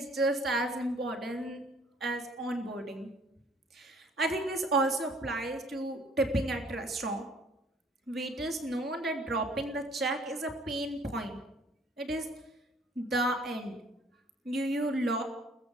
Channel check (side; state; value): both; normal; correlation 0.57